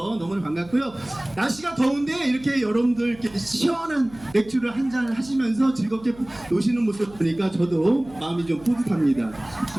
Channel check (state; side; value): noise; right; hum, 21 dB below the sound